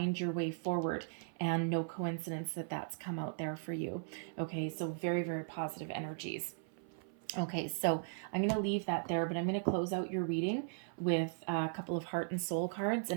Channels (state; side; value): silent; left; 53 dB below the other